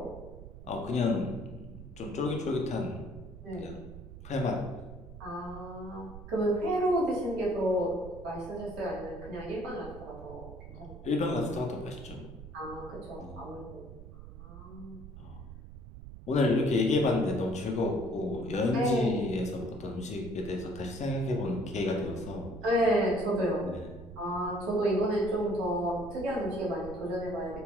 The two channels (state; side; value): noise; right; rumble, 14 dB below the sound